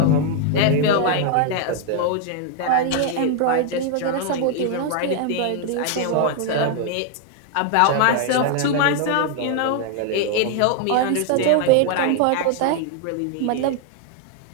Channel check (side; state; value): both; different; correlation 0.00